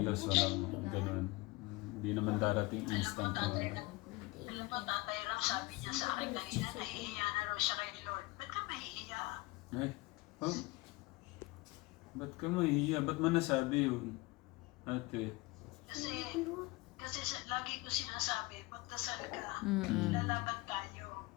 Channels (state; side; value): quieter; right; 21.8 dB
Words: walang ganun. Hindi naman darating instant. Yung tatay lang sabi niya sa akin kanina, nahihiya na raw siya kay Lord. Ba't ka mahihiya? Ay, ba't ka mahihiya? Ba't mo nasabi yun, ate? Kasi lagi ko sinasabi, magdasal ka, lalaban tayo,